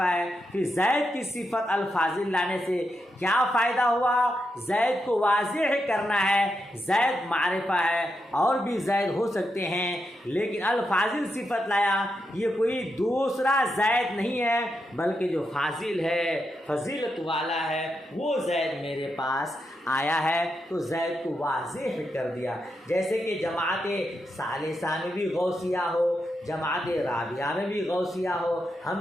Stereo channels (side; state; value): both; normal; correlation 0.85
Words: ہے، پھر زید کی صفت الفاضل لانے سے کیا فائدہ ہوا؟ زید کو واضح کرنا ہے، زید معرفہ ہے، اور بھی زید ہو سکتے ہیں، لیکن الفاضل صفت لایا، یہ کوئی دوسرا زید نہیں ہے بلکہ جو فاضل ہے، فضیلت والا ہے، وہ زید میرے پاس آیا ہے تو زید کو واضح کر دیا، جیسے کہ جماعت ثالثہ میں بھی غوثیہ ہو، جماعت رابعہ میں بھی غوثیہ ہو،